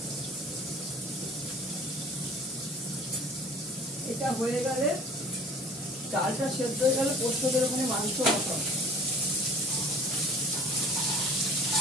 এটা হয়ে গেলে, ডালটা সেদ্ধ হয়ে গেলে পোস্ত যেরকম মাংস মতো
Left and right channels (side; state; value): both; normal; correlation 0.47